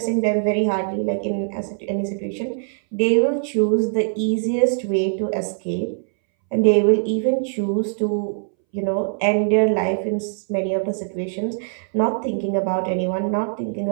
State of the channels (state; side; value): silent; left; 63 dB below the other